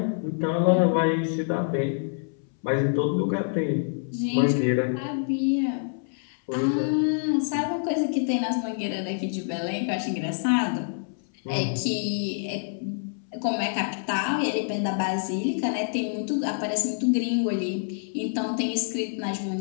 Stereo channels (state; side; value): silent; right; 61 dB below the other